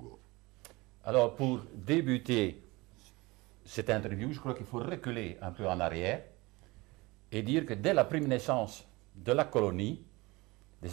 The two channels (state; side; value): quieter; left; 22.8 dB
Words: Alors, pour débuter cette interview, je crois qu'il faut reculer un peu en arrière et dire que dès la première naissance de la colonie,